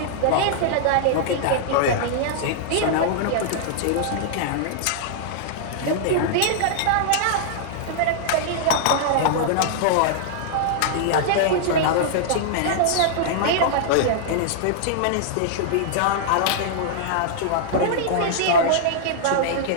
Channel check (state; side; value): different; both; correlation -0.01